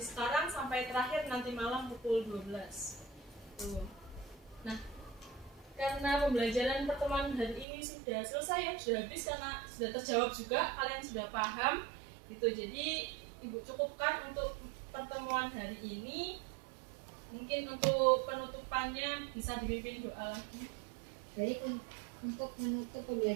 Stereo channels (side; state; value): left; drops out; at 7.7 s